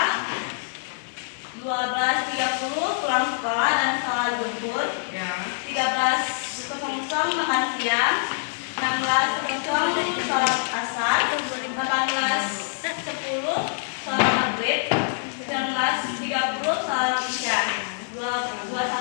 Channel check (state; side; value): silent; right; digital silence